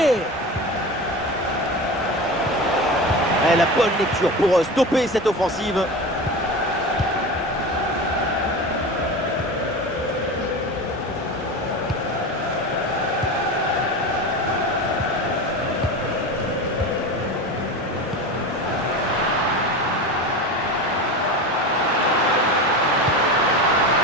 Et la bonne lecture pour stopper cette offensive.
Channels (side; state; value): both; normal; correlation 0.27